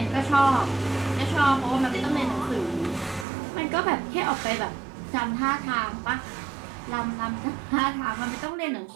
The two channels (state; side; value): drops out; left; at 3.2 s